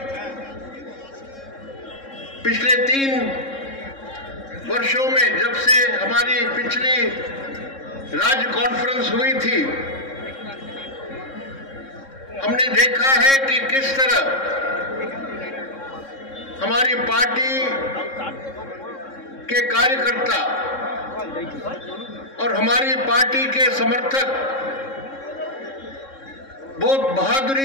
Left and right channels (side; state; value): right; late; 3.7 ms